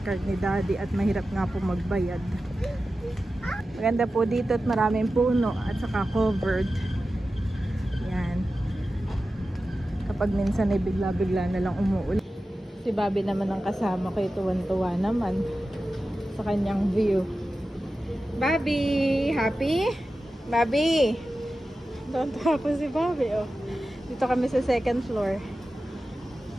card ni Daddy at mahirap nga po magbayad. Maganda po dito at maraming puno at saka covered. Yan. Kapag minsan ay bigla-bigla na lang umuulan. Si Bobby naman ang kasama ko, tuwan-tuwa naman sa kanyang view. Bobby! Happy? Bobby! Tuwan-tuwa po si Bobby. Oh. Dito kami sa second floor.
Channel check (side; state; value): both; normal; correlation 0.93